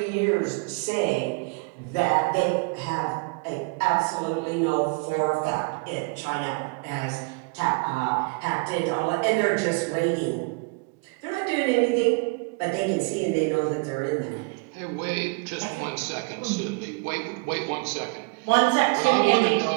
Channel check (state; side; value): quieter; left; 30.6 dB